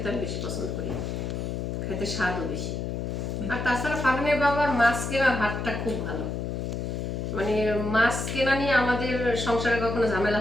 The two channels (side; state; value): left; noise; hum, 3 dB below the sound